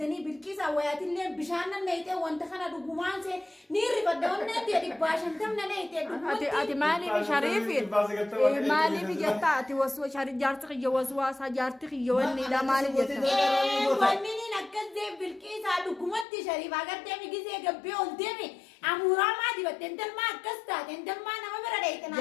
بالكيس أويات اللي بشاننا نيته وانتخنا دقومان سه نيري بدون نتي أدي باشن تم نيته أتي مالي بشريف مالي بجتا أتي وسوا شريف جارتك يوسوا سجارتك يواني لا مالي جتا وانني نكذب بالكيس دقومات شريف أقدر تمي كيسه قبي أولتمي أمورا ما دي بتندل ما كستا تندل ما نما بردايتنا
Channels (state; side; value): drops out; right; at 16.2 s